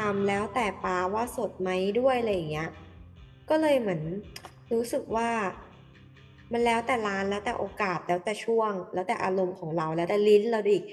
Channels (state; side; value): identical; both; correlation 1.00